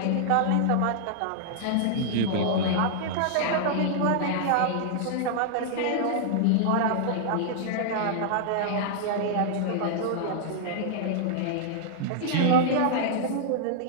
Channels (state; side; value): different; both; correlation -0.01